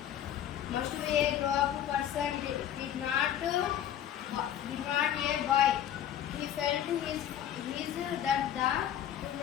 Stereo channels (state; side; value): quieter; right; 10.6 dB